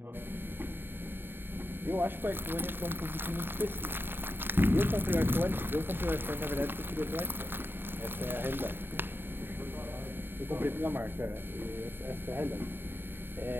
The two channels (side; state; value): left; late; 0.10 ms